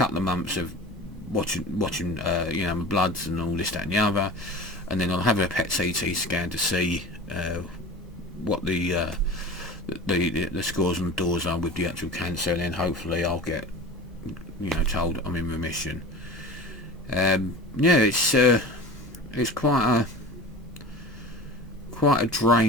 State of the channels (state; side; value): normal; both; correlation 0.36